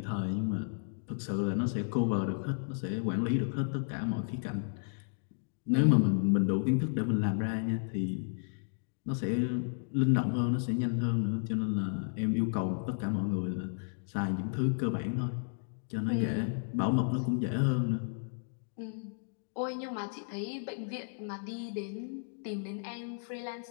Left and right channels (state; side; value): silent; right; digital silence